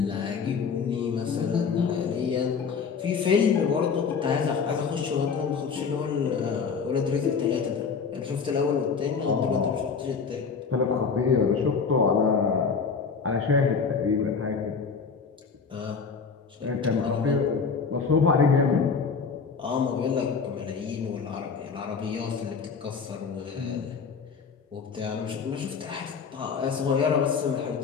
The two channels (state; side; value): quieter; right; 5.6 dB